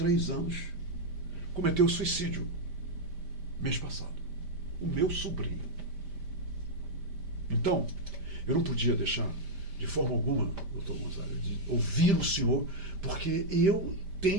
anos, cometeu suicídio mês passado. O meu sobrinho. Então, eu não podia deixar, de forma alguma, doutor Gonzaga, de ouvir o senhor, porque eu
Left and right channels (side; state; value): left; late; 5.0 ms